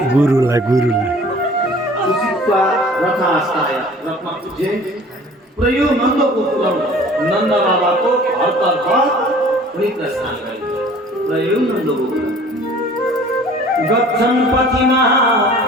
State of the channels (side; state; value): both; normal; correlation 0.48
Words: गुरुलाई उसितमा रथास्ताय रथमा उठे, पुरै नन्दको पुरम नन्द बाबाको घरतर्फ उनी प्रस्थान गरे। पुरै नन्दको पुरम गच्छन् पथिमा